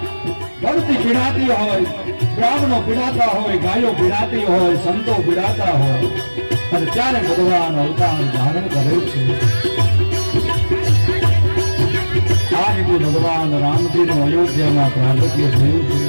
ધરતી પીડાતી હોય, બ્રાહ્મણો પીડાતા હોય, ગાયો પીડાતી હોય, સંતો પીડાતા હોય, અને ત્યારે ભગવાન અવતાર ધારણ કરે છે. આ રીતે ભગવાન રામજીનું અયોધ્યામાં પ્રાગટ્ય થયું છે.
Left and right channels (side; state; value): both; inverted; correlation -1.00